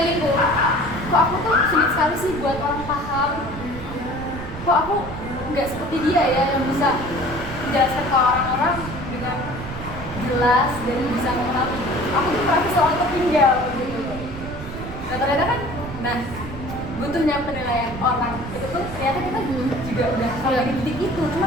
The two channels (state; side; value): noise; right; rumble, 10 dB below the sound